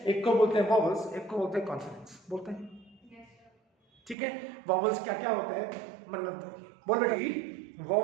एक को बोलते हैं वॉवल्स, एक को बोलते हैं कॉन्सोनेंट्स, बोलते हैं, ठीक है। वॉवल्स क्या क्या होते हैं, मन्नत बोल बेटा।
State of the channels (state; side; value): drops out; left; at 4.2 s